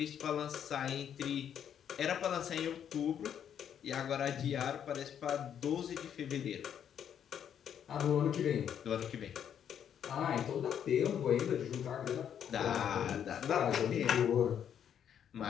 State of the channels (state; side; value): quieter; right; 9.0 dB